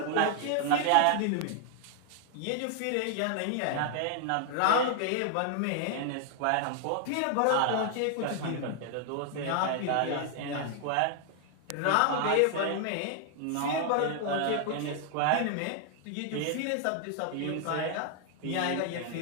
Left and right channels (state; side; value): different; both; correlation 0.00